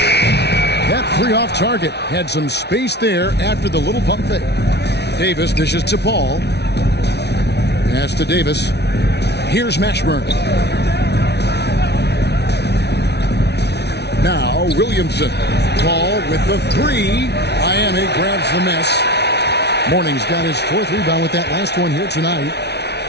That 3 off target had some space there after the little pump fake. Davis dishes to Paul. Pass to Davis. Here's Mashburn. Now Williamson. Paul with the 3. Miami grabs the miss. Mourning's got his 4th rebound with that last one here tonight.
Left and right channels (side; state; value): right; late; 0.49 ms